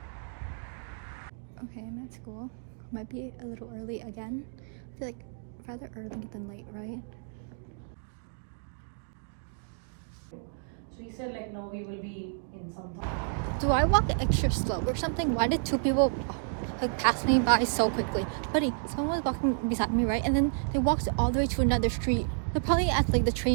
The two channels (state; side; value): silent; left; digital silence